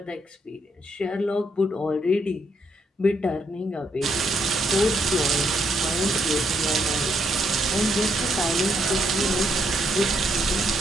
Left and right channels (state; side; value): normal; both; correlation 0.75